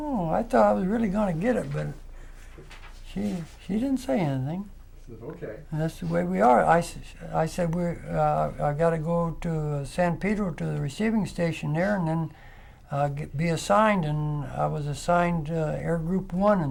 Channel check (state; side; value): identical; both; correlation 1.00